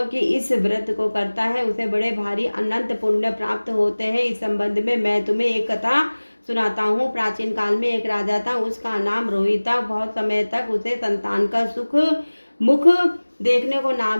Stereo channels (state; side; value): inverted; both; correlation -1.00